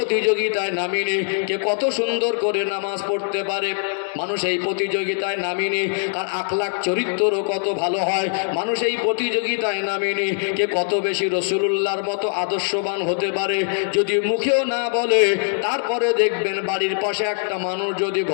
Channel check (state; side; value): silent; right; digital silence